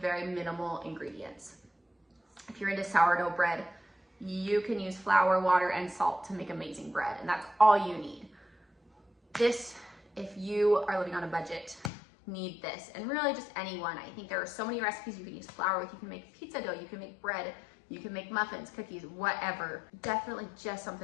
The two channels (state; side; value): drops out; right; at 11.9 s